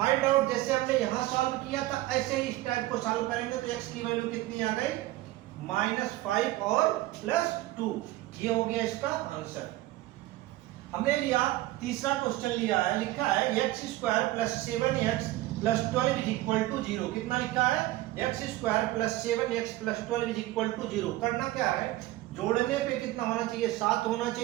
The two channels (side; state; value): left; quieter; 17.0 dB